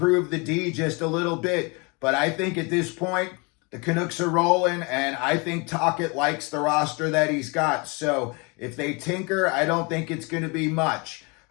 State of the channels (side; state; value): right; quieter; 29.8 dB